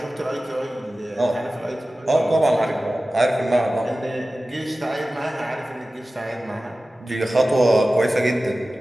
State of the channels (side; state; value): both; normal; correlation 0.96